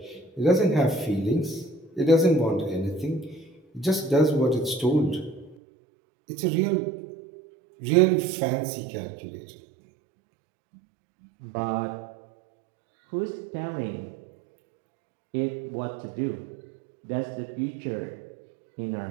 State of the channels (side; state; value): left; drops out; at 5.6 s